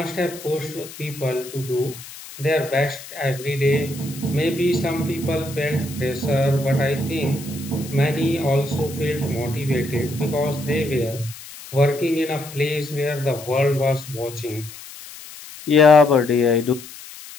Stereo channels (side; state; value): left; noise; hiss, 15 dB below the sound